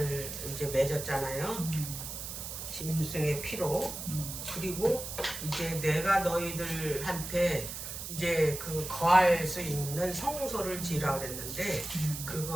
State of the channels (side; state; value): right; noise; hiss, 7 dB below the sound